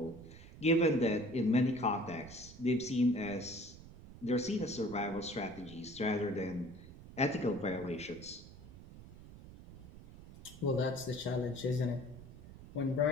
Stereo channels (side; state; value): right; noise; rumble, 17 dB below the sound